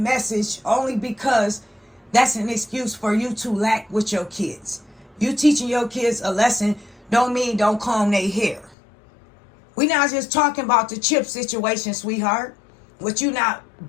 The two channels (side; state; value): right; drops out; at 8.8 s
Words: only because that's an excuse for you to lack with your kids. You teaching your kids a lesson don't mean don't comb their hair. We not just talking about the chip situation, sweetheart. With you not